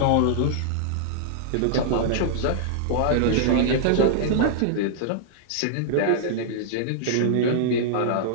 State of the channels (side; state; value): both; different; correlation -0.01